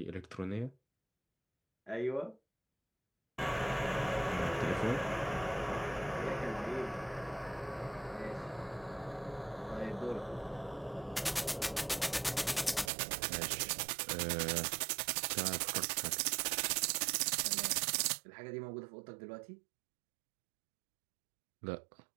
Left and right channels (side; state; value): left; drops out; at 12.9 s